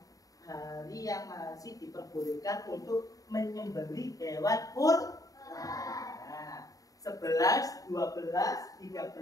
Hari yang masih diperbolehkan untuk menyembelih hewan kurban. Nah, 11, 12,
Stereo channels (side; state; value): right; late; 0.17 ms